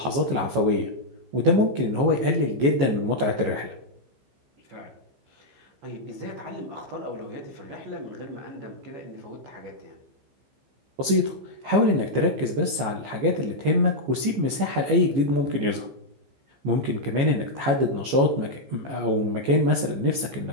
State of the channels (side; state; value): left; late; 15 ms